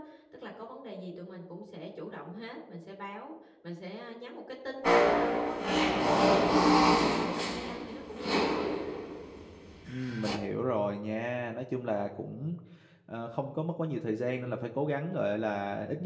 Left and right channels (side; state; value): both; identical; correlation 1.00